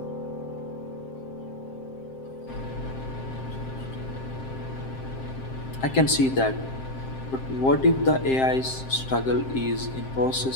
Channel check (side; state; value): right; late; 7.6 ms